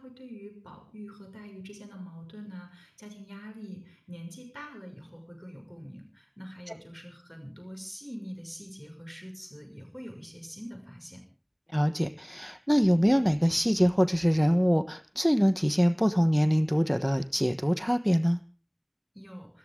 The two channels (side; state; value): both; identical; correlation 1.00